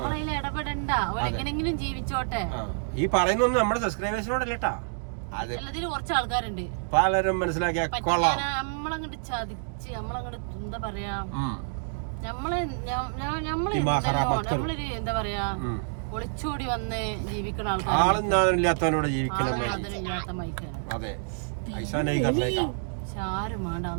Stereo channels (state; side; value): silent; left; digital silence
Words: ഇടപെടണ്ട. അവരെങ്ങനെങ്കിലും ജീവിച്ചോട്ടെ. ഈ പറയുന്നൊന്നും നമ്മുടെ സബ്സ്ക്രൈബേഴ്സിനോടല്ലേട്ടാ, എല്ലാത്തിലും കുറച്ച് ആൾക്കാരുണ്ട് പലരും മനസ്സിലാക്കിയ നമ്മളങ്ങോട്ട് ചതിച്ച് നമ്മളങ്ങോട്ട് എന്താ പറയാ, നമ്മളൊരു എന്താ പറയാ ഒളിച്ചോടി വന്ന് ജീവിക്കുന്ന ആൾക്കാരില്ലാത്തവരോട് ജീവിക്കണം. അതെ, ആരും വേണ്ട,